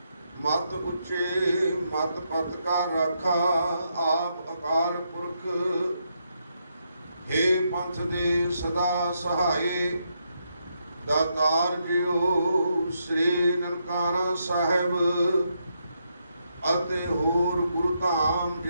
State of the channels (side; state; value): both; inverted; correlation -0.79